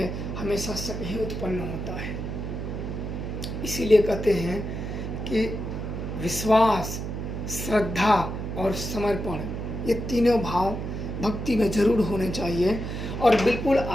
हमेशा शक ही उत्पन्न होता है। इसीलिए कहते हैं कि विश्वास, श्रद्धा और समर्पण, ये तीनों भाव भक्ति में जरूर होने चाहिए। और बिल्कुल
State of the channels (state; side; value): noise; right; hum, 5 dB below the sound